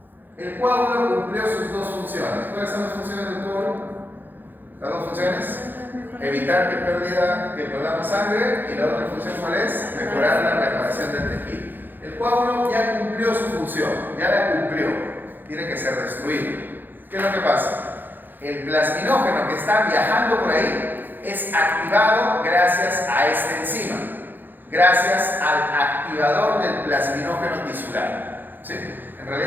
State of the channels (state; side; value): late; left; 0.090 ms